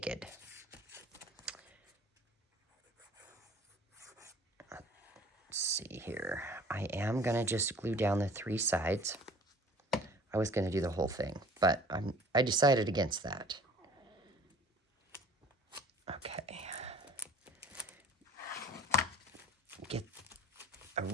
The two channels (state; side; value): normal; both; correlation 0.48